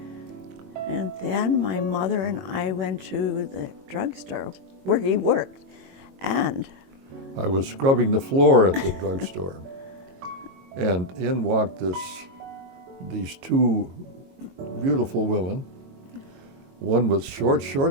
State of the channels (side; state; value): left; late; 22 ms